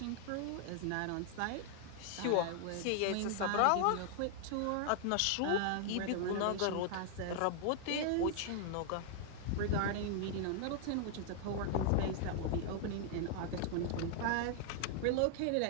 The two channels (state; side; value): different; both; correlation 0.00